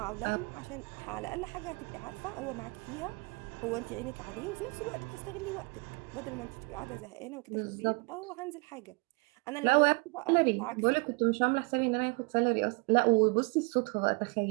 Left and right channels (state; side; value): quieter; left; 29.3 dB